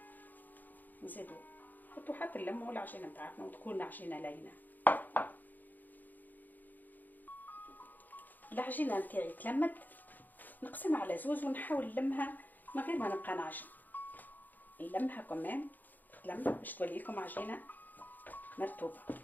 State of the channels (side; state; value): right; late; 0.085 ms